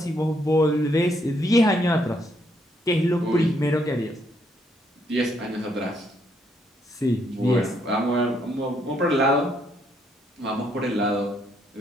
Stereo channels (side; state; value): both; normal; correlation 0.72